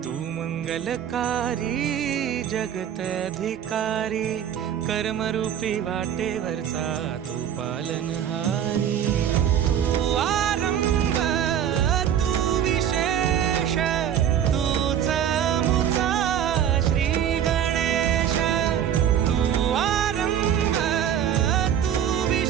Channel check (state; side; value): quieter; left; 9.6 dB